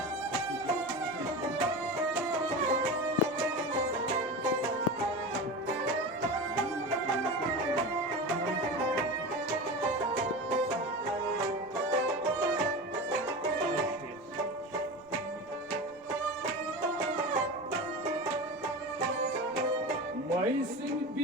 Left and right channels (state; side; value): noise; right; rumble, 29 dB below the sound